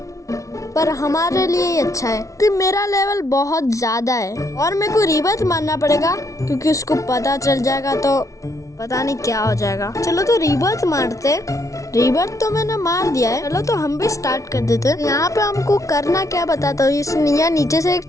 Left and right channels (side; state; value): right; late; 0.15 ms